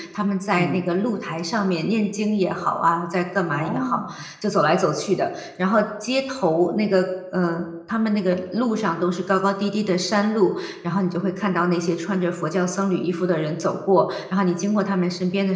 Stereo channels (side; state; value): both; identical; correlation 1.00